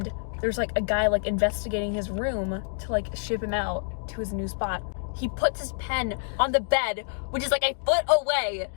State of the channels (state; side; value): silent; right; digital silence